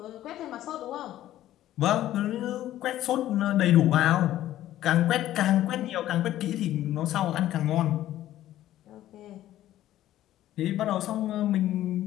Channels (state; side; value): quieter; right; 13.4 dB